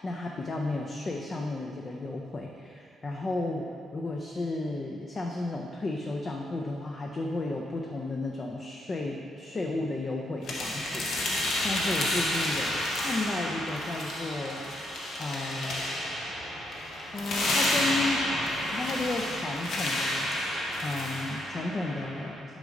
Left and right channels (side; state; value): both; normal; correlation 0.78